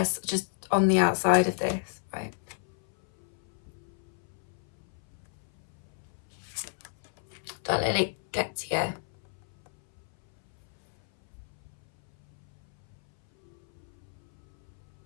just on the outside of this, right? Don't let it get to you.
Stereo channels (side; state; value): right; silent; 57 dB below the other